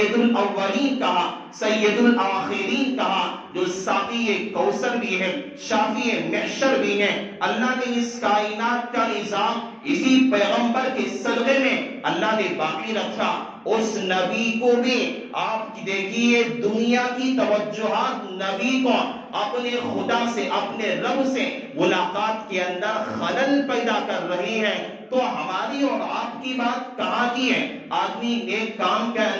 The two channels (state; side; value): identical; both; correlation 1.00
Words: الاولین کہا، سید الاخرین کہا، جو ساقی کوثر بھی ہے، شافی محشر بھی ہے۔ اللہ نے اس کائنات کا نظام اسی پیغمبر کے صدقے میں اللہ نے باقی رکھا۔ اس نبی کو بھی آپ دیکھیے دنیا کی توجہات نبی کو اپنے خدا سے، اپنے رب سے ملاقات کے اندر خلل پیدا کر رہی ہے، تو ہماری اور آپ کی بات کہاں کی ہے؟ آدمی نیک کام کے